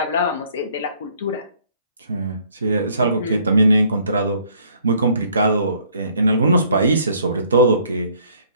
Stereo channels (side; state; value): both; inverted; correlation -0.61